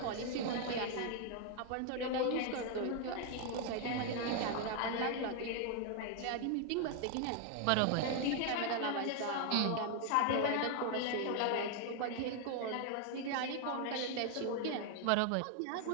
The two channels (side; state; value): both; different; correlation 0.00